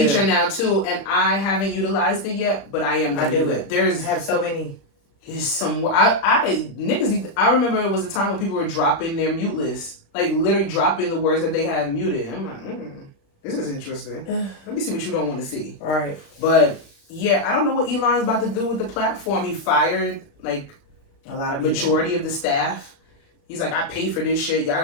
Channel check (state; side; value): late; right; 36 ms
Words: now too, and I haven't utilized it yet, but I am gonna do it. I have so many. There's some niggas. I remember it was a time when people were dropping their mute list, like literally dropping the words that they had muted. I'm like, this is interesting. Let me see what you don't want to see. All right. But yeah, I don't know what Elon's about to do with the platform. He fired like a lot of majority of the staff. He's like, I pay for this shit. Y'all